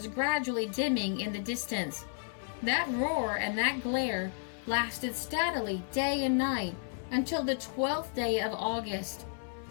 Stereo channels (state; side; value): silent; right; digital silence